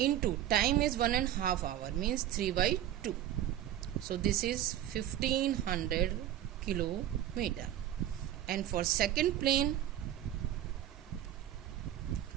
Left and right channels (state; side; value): quieter; left; 12.1 dB